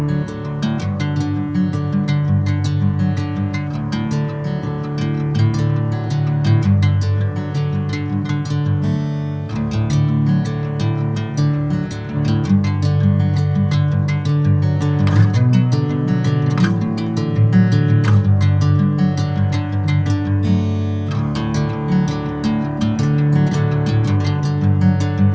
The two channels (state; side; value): identical; both; correlation 1.00